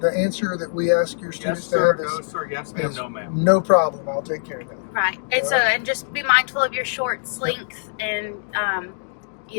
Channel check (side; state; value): right; silent; 64 dB below the other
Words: answer that we ask your Yes, students to sir. have No, is sir. Yes, ma'am. No, ma'am. no problem. I'll take care of that. Right. And so, and just be mindful of your shorts length and,